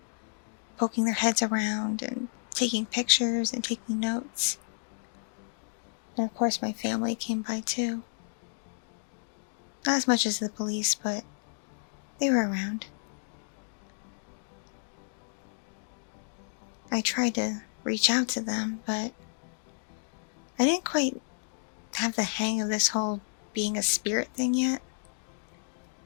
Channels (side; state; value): right; silent; digital silence